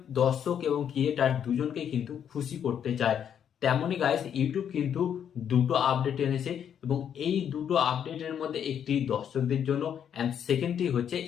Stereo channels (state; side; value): quieter; right; 8.7 dB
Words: দর্শক এবং ক্রিয়েটার দুজনকে কিন্তু খুশি করতে চায়। তেমনই গাইস, ইউটিউব কিন্তু দুটো আপডেট এনেছে এবং এই দুটো আপডেটের মধ্যে একটি দর্শকদের জন্য অ্যান্ড সেকেন্ডটি হচ্ছে